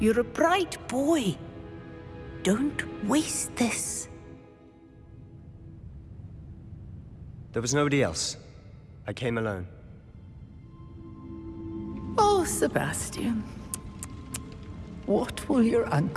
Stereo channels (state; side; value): identical; both; correlation 1.00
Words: a bright boy. Don't waste this. There was nobody else. I came alone. Oh, Sebastian. What will your